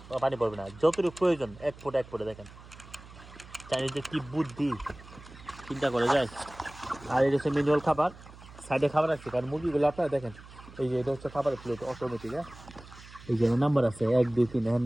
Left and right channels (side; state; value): right; noise; hum, 19 dB below the sound